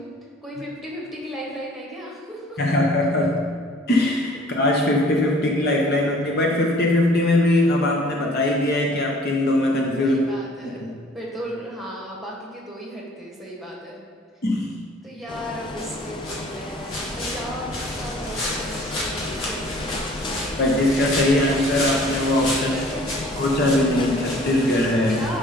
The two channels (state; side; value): normal; both; correlation 0.53